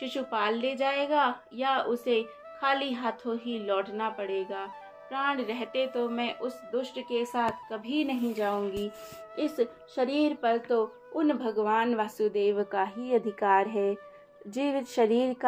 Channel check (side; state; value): both; identical; correlation 1.00